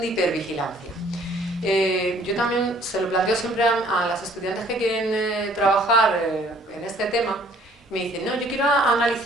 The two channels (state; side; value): normal; both; correlation 0.58